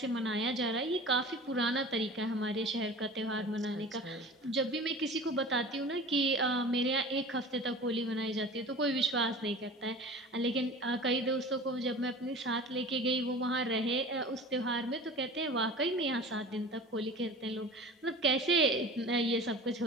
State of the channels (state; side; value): normal; both; correlation 0.39